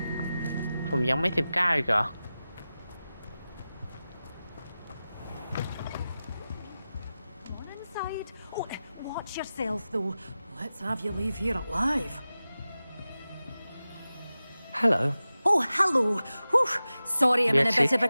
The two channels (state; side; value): inverted; both; correlation -0.95